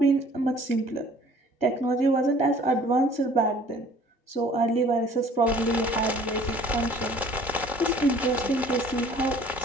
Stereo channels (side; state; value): both; normal; correlation 0.53